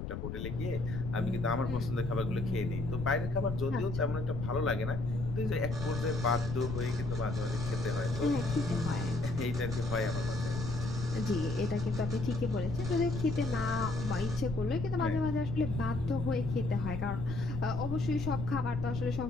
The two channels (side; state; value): left; noise; rumble, 5 dB below the sound